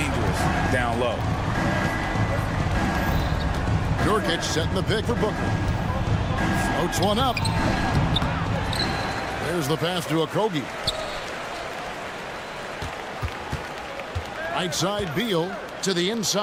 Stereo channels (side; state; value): both; identical; correlation 1.00